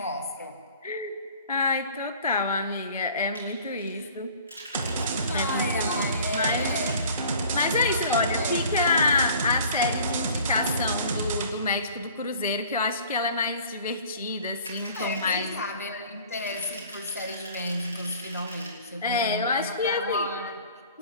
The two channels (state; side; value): inverted; both; correlation -0.48